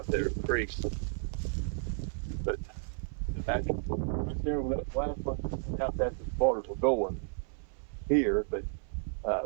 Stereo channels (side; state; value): left; silent; 56 dB below the other